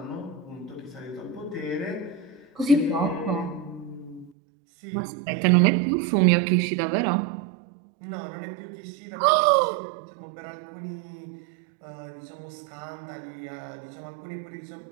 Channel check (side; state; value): left; drops out; at 4.3 s